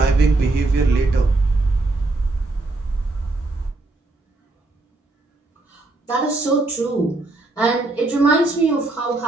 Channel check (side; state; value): left; quieter; 3.1 dB